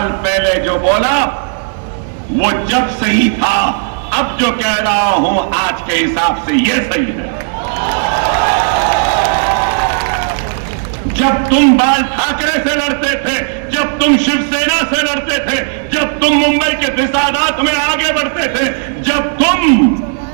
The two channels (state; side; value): silent; left; 64 dB below the other